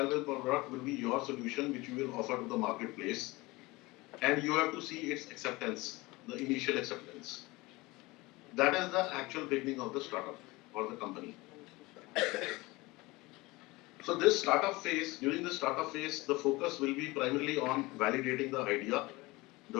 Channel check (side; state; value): right; quieter; 22.0 dB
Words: product will be your solution, which you will offer to the marketplace. And you have to see its acceptance, the initial acceptance. That is the actual beginning of the startup or the company. So this startup phase, during the startup phase, the focus will be primarily on validating the idea,